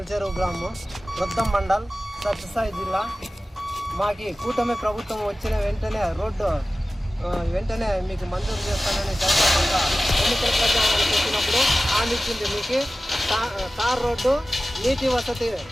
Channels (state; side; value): normal; both; correlation 0.96